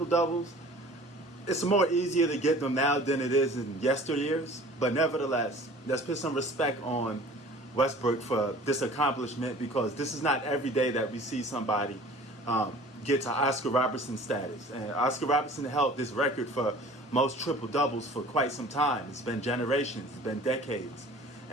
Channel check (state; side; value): normal; both; correlation 0.46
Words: doubles, it's more easier to get them now than it is in yesteryears. But nevertheless, let's put some respect on Westbrook for this accomplishment, because this is not every day that we see somebody get to Oscar Robertson status. And Oscar Robertson held this record for most triple doubles for quite some time. It's been generations, it's been decades.